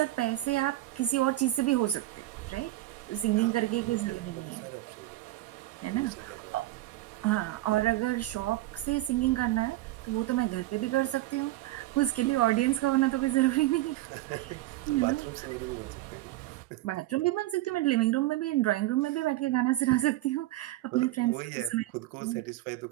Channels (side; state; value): left; quieter; 16.4 dB